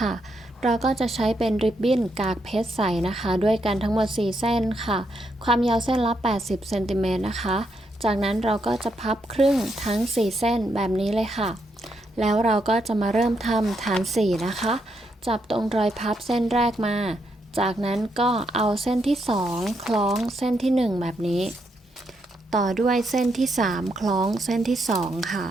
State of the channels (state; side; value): normal; both; correlation 0.79